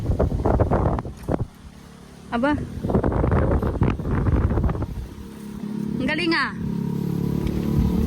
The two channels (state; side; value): identical; both; correlation 1.00